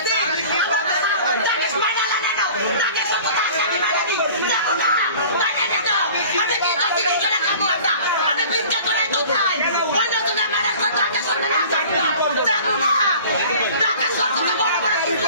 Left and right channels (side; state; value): both; inverted; correlation -0.44